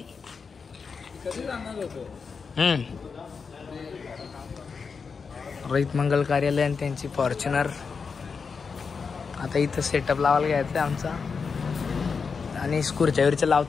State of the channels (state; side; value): quieter; right; 5.4 dB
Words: रोहित मंगल कार्यालय आणि त्यांची फॉर्च्युनर. आता इथं सेटअप लावायला घ्यायचं आमचा. आणि स्कूरच्या वरच्या